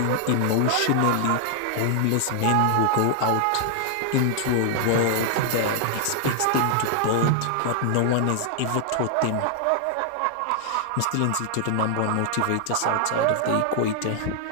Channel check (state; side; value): different; both; correlation 0.00